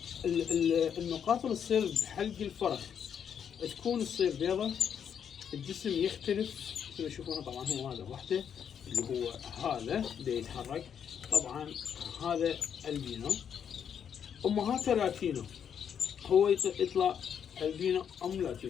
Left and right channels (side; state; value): right; quieter; 8.1 dB